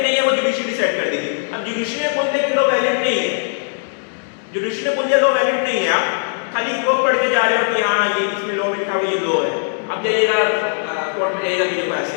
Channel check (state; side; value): silent; right; 66 dB below the other